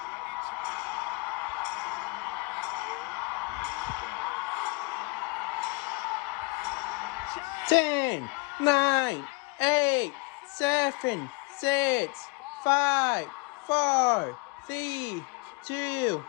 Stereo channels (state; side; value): quieter; right; 28.1 dB